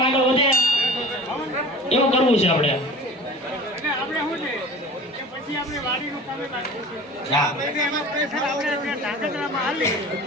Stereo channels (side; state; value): both; normal; correlation 0.40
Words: આગળ વધે એવું કરવું છે આપણે.